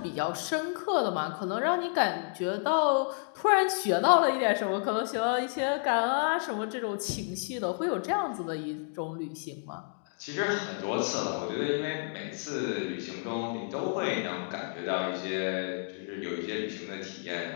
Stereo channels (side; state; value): right; silent; 57 dB below the other